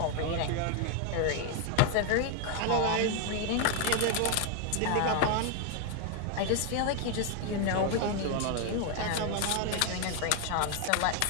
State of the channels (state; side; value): different; both; correlation 0.01